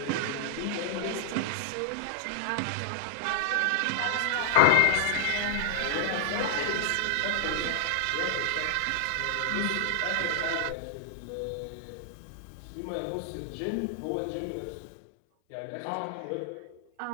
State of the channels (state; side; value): different; both; correlation 0.00